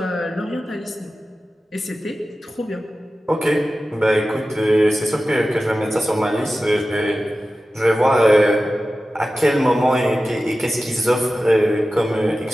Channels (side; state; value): both; normal; correlation 0.95